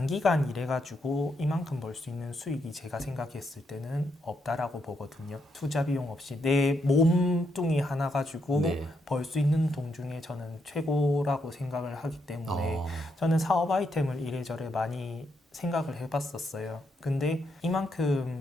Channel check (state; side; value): normal; both; correlation 0.79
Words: 일해가지고 이만큼 벌 수 있는 수익이 제가 생각했을 때는 없다라고 보거든요. 투자 비용 없이 내 몸뚱이 하나 가지고 벌 수 있는 돈 중에 저는 최고라고 생각을 하기 때문에 저는 사업 아이템을 이래저래 많이 생각을 해봤었어요. 근데